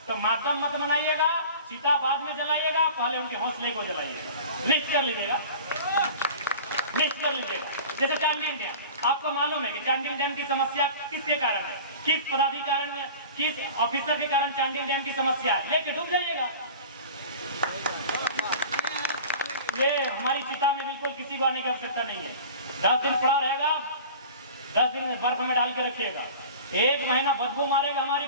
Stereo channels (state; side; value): inverted; both; correlation -0.39